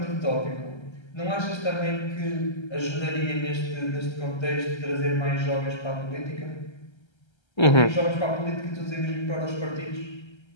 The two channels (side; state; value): right; late; 1.3 ms